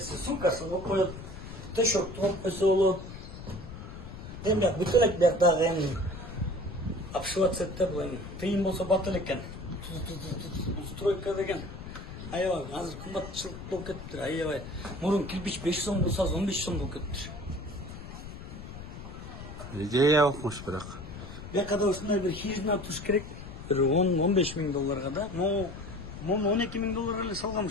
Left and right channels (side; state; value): left; noise; rumble, 11 dB below the sound